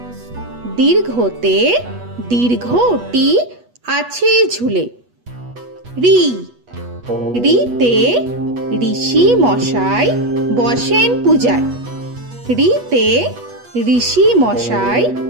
দীর্ঘতে দীর্ঘটি আছে ঝুলে। রি রিতে ঋষি মশাই বসেন পূজায়। রিতে ঋষি মশাই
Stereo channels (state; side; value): late; left; 8.2 ms